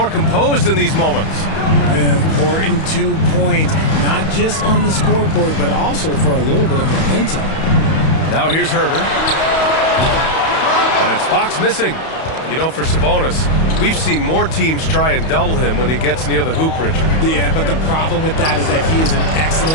composed in these moments. An important 2 points, not just on the scoreboard, but also for a little bit of momentum. Now here's Huerter. And it's Fox missing. You know, for Sabonis, we've seen more teams try and double him when he gets near the hoop, Richard. Yeah, but the problem with that is that he is an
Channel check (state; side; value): late; right; 31 ms